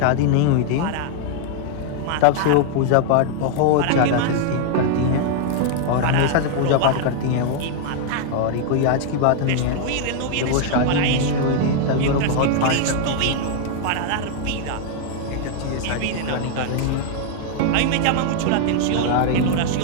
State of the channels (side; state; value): both; different; correlation 0.00